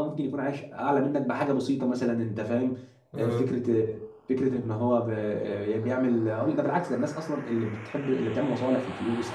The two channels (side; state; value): both; identical; correlation 1.00